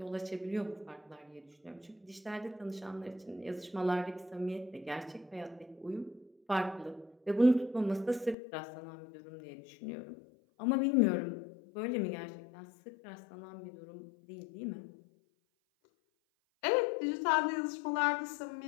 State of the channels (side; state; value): right; drops out; at 8.3 s